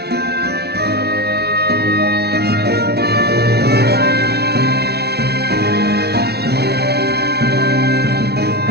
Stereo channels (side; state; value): left; late; 0.48 ms